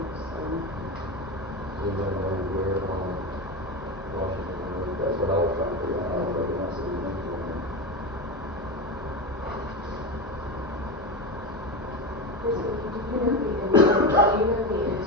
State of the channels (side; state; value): both; normal; correlation 0.20